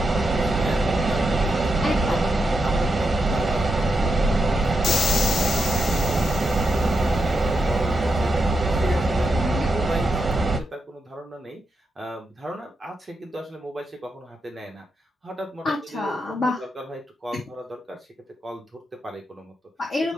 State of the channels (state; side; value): normal; both; correlation 0.84